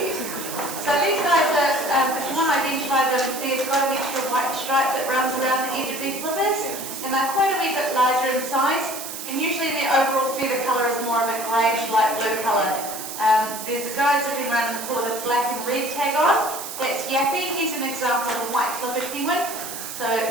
So these guys are, if you want to identify them, they've got an extra white stripe that runs around the edge of their flippers, and they're quite a wee bit larger in size, and usually their overall feather colour is more of a greyish light blue colour. There's a guy sitting around in the pool with a black and red tag on. That's Yappy. He's an example of a white-flipped penguin. So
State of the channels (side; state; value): right; noise; hiss, 8 dB below the sound